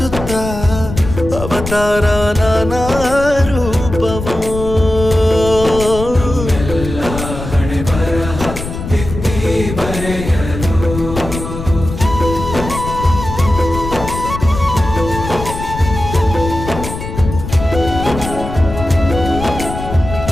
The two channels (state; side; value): noise; left; rumble, 8 dB below the sound